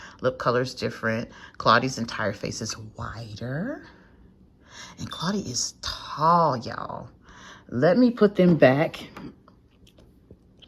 Lip color is different. Claudie's entire face is wider, and Claudie is tall, y'all. Let me put them back.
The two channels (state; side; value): identical; both; correlation 1.00